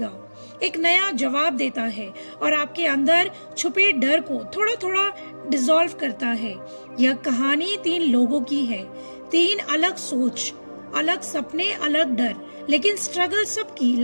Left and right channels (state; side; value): inverted; both; correlation -1.00